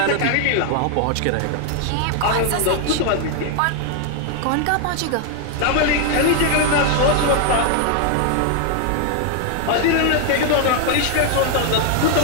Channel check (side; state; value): both; different; correlation 0.00